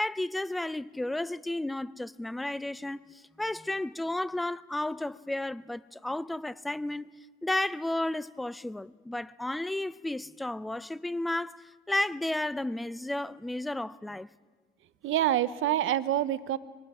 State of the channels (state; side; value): normal; both; correlation 0.61